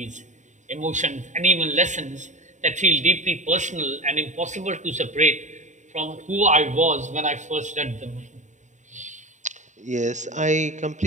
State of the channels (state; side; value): late; left; 0.35 ms